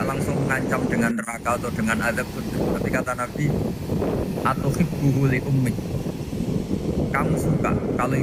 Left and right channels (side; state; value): both; identical; correlation 1.00